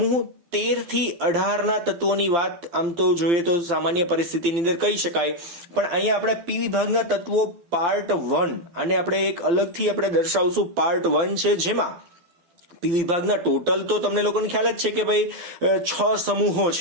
13 થી 18 ના તત્વોની વાત આમ તો જોઈએ તો સામાન્ય પરિસ્થિતિની અંદર કહી શકાય, પણ અહીંયા આપણે પી વિભાગના તત્વો પાર્ટ 1 અને આપણે એક અલગથી આપણે દર્શાવશું પાર્ટ 1 છે, જેમાં પી વિભાગના ટોટલ તો તમને લોકોને ખ્યાલ જ છે કે ભાઈ 6 સમૂહો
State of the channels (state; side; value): late; left; 12 ms